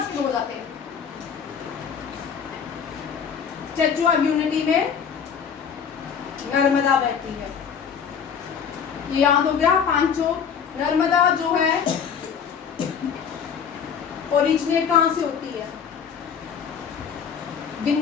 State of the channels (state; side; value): quieter; right; 7.1 dB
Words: शुरू हो जाते हैं। स्टैचू ऑफ यूनिटी में नर्मदा बहती है, ये याद हो गया पांचों। नर्मदा जो है ओरिजिनेट कहाँ से होती है?